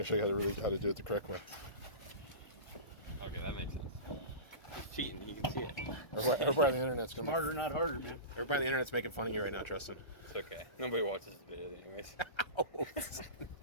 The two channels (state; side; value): late; right; 1.3 ms